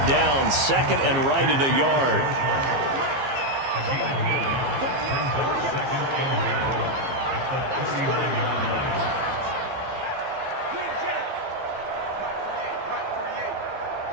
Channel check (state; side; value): late; left; 15 ms